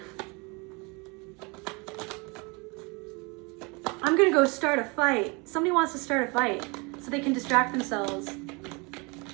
I'm going to go start a fight. Somebody wants to start a fight so they can distract themselves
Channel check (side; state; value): left; quieter; 28.9 dB